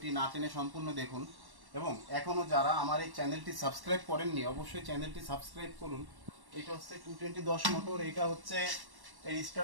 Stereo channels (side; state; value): left; late; 1.1 ms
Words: না টেনে সম্পূর্ণ দেখুন। এবং এখনও যারা আমার এই চ্যানেলটি সাবস্ক্রাইব করেননি অবশ্যই চ্যানেলটি সাবস্ক্রাইব করুন। এটা হচ্ছে 220 10 মোটর, এটা হচ্ছে এই